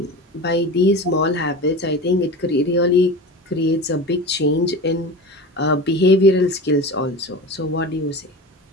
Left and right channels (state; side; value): normal; both; correlation 0.31